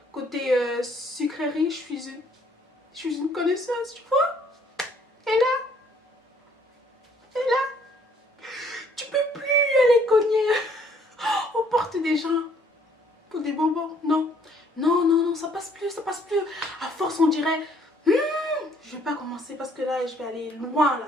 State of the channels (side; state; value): both; normal; correlation 0.63